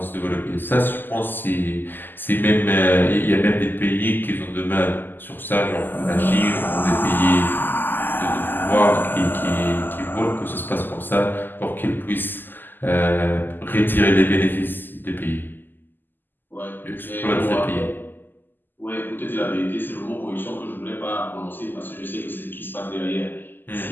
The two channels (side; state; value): right; late; 0.091 ms